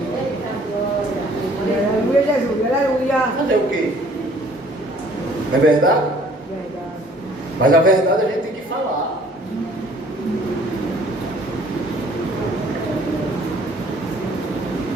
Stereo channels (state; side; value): normal; both; correlation 0.57